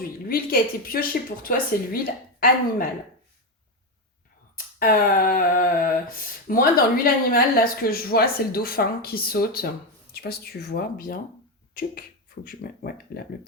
l'huile qui a été piochée pour toi, c'est l'huile animale. Euh, Moi, dans l'huile animale, là, ce que je vois, c'est le dauphin qui saute. Je sais pas si tu vois bien. Tuc. Faut que je mette. Ouais, là, le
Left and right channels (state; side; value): normal; both; correlation 0.10